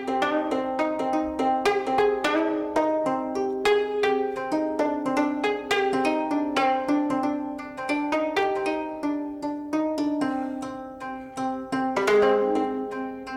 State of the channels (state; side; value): identical; both; correlation 1.00